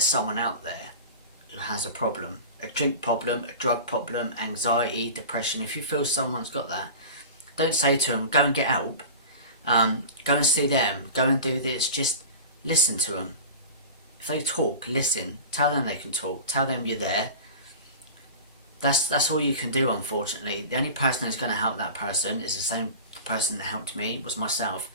someone out there who has a problem, a drink problem, a drug problem, anxiety, depression, if you feel someone's got that, don't say to them, go and get help, go and see them, go and do this. Just listen to them. If they talk, listen. Tell them they can talk. Tell them you're there. That's all you can do, unfortunately. The only person who's going to help that person is the same person that helped me, was myself.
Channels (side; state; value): both; inverted; correlation -0.34